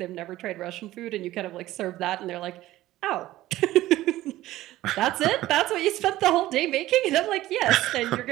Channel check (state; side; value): quieter; left; 15.8 dB